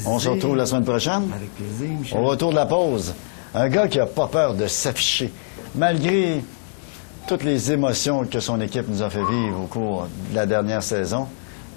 On se retrouve la semaine prochaine. Avec plaisir, Michel. Au retour de la pause, un gars qui n'a pas peur de s'afficher, malgré toutes les émotions que son équipe nous a fait vivre au cours de la dernière saison.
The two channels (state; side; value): silent; right; 59 dB below the other